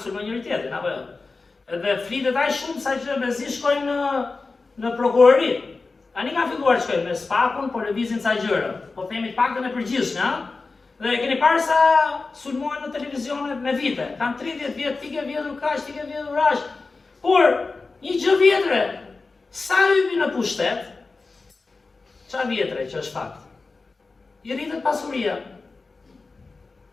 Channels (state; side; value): quieter; right; 3.9 dB